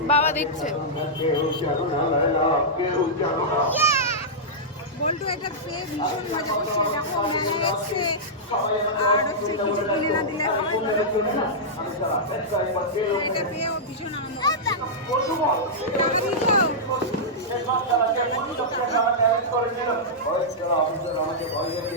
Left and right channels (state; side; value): normal; both; correlation -0.11